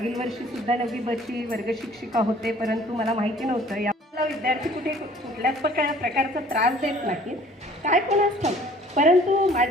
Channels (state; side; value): normal; both; correlation 0.53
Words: वर्षीसुद्धा 9वी बची वर्ग शिक्षिका होते, परंतु मला माहिती नव्हतं याला विद्यार्थी कुठल्याच प्रकारचा त्रास देत नाहीत, काय कोणाच ठाऊक. परंतु